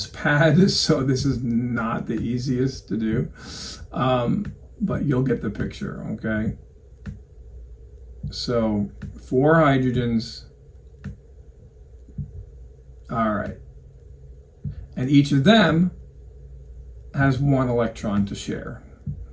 pad, so this is not the easiest to do, but you'll get the picture, okay? So 4 hydrogens, all right, and each of them has 1 electron to share,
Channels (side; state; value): both; identical; correlation 1.00